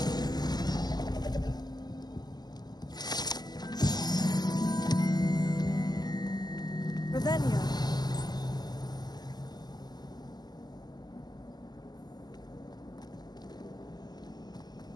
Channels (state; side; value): late; right; 0.20 ms